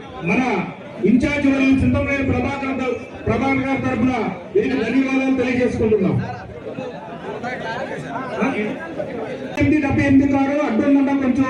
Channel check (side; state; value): both; identical; correlation 1.00